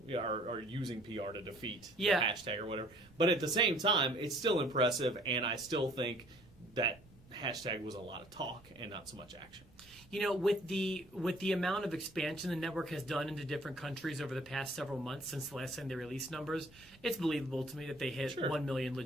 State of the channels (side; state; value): right; noise; rumble, 25 dB below the sound